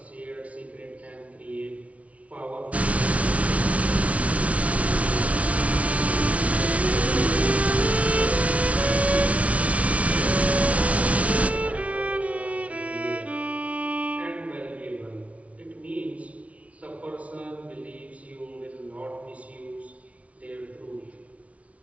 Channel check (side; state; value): left; late; 0.065 ms